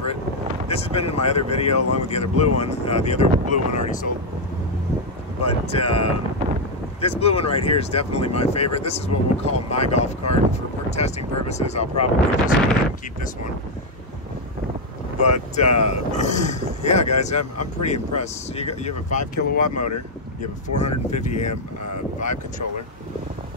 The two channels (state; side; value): normal; both; correlation 0.02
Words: This has been in my other video along with the other blue one. The other blue one already sold. But this blue one right here is definitely my favorite. This is what we'll call my golf cart. For testing purposes, I'll probably just go ahead and keep this one. But yeah, guys, I'm pretty impressed. You have a 5 kilowatt motor. You have a 450 amp Vibe controller.